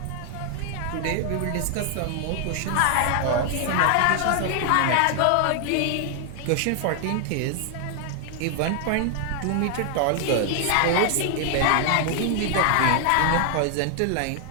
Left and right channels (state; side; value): different; both; correlation 0.00